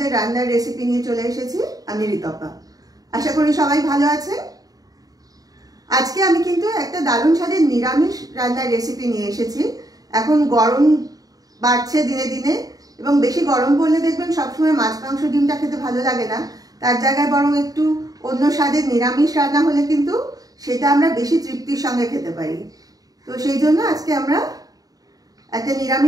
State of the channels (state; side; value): late; left; 0.18 ms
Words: রান্নার রেসিপি নিয়ে চলে এসেছি। আমি ঋতপা। আশা করি সবাই ভালো আছেন। আজকে আমি কিন্তু একটা দারুণ স্বাদের নিরামিষ রান্নার রেসিপি নিয়ে এসেছি। এখন গরম বাড়ছে দিনে দিনে, এবং বেশি গরম পড়লে দেখবেন সবসময় মাছ মাংস ডিমটা খেতে ভালো লাগে না। তার জায়গায় বরং একটু অন্য স্বাদের নিরামিষ রান্না হলে কিন্তু সেটা আমরা বেশি তৃপ্তির সঙ্গে খেতে পারি। তো সেই জন্য আজকে আমরা একটা